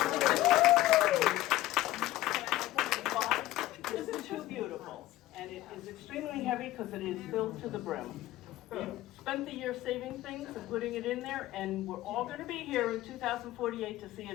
This is too beautiful. And it is extremely heavy because it is filled to the brim. We spent the year saving things and putting it in there, and we're all going to be here in 2048 to see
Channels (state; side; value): quieter; right; 15.9 dB